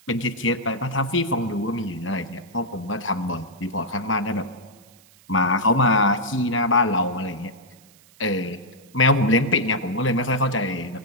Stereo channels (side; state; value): right; noise; hiss, 27 dB below the sound